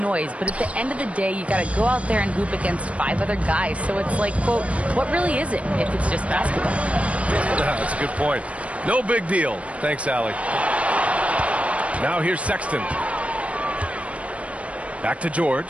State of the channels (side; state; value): left; late; 0.064 ms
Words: but at the end of the day, you got to go out there and hoop against 5 other guys. So it's like, quote, what really is it if it's just basketball?" That's a good point. No big deal. Thanks, Allie. Now here's Sexton. Back to